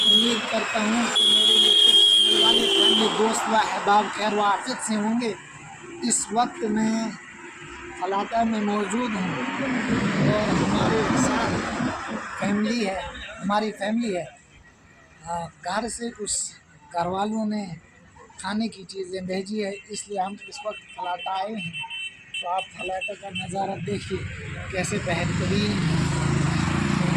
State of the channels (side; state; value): both; identical; correlation 1.00